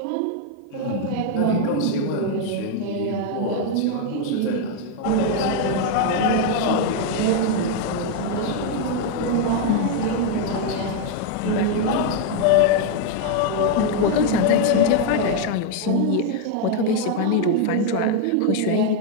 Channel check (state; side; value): different; both; correlation 0.01